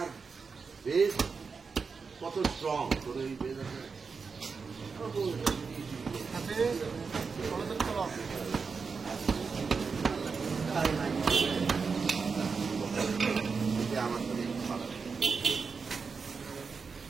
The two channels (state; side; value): quieter; left; 5.1 dB